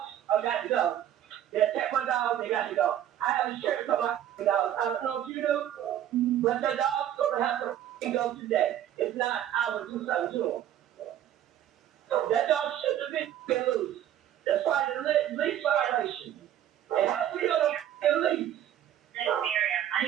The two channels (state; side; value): quieter; left; 11.2 dB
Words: are got to go. They attack my dogs, they got to go. I have insurance on my dogs. I don't know if you do, but the dog's gonna have to go today. If not, I will do something to them. That dog shouldn't have been loose. That's why the lease violation. And how we gonna lease? Miss Miriam, I